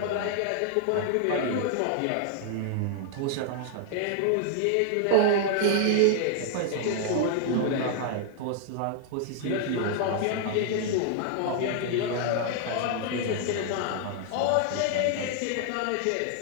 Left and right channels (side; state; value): both; different; correlation 0.00